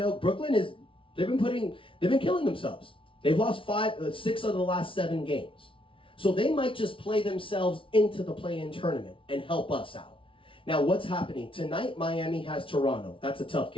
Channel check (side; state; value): right; late; 0.25 ms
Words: they've been killing themselves. They've lost 6 of the last 7 games. So they might just play themselves into the play-in tournament and help us out. Now what's happening? Tonight, Miami has Toronto. That's a tough